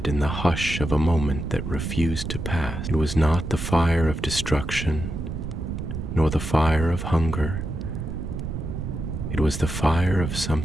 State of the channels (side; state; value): right; noise; rumble, 5 dB below the sound